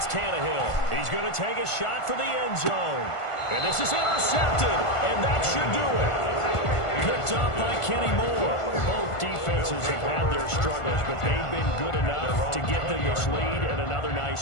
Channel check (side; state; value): right; late; 1.5 ms